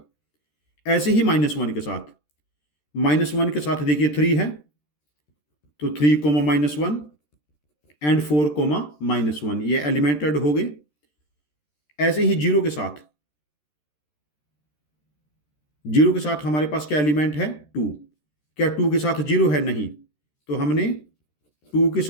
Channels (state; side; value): late; right; 13 ms